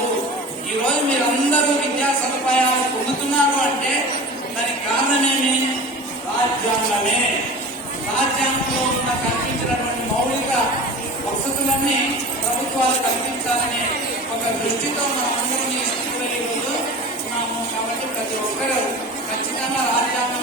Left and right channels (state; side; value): normal; both; correlation 0.36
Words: ఈ రోజు మీరందరూ విద్యా సదుపాయాలు పొందుతున్నారు అంటే దానికి కారణమేమి? రాజ్యాంగమే. రాజ్యాంగంలో ఉన్న కల్పించినటువంటి మౌలిక వసతులన్నీ ప్రభుత్వాలు కల్పించాలనే ఒక దృష్టితో మనం అందరం ఈ స్థితిలో ఈరోజు ఉన్నాము. కాబట్టి ప్రతి ఒక్కరూ ఖచ్చితంగా